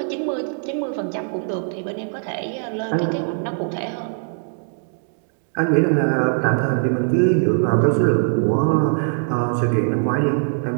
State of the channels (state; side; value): silent; left; digital silence